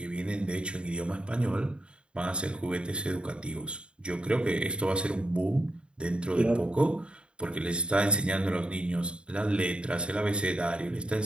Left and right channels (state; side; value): late; left; 0.054 ms